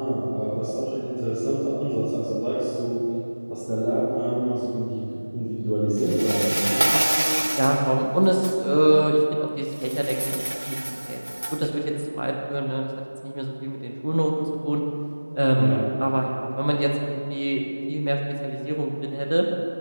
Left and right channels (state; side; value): inverted; both; correlation -1.00